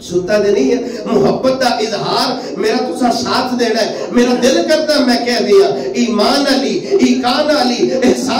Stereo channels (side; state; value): both; identical; correlation 1.00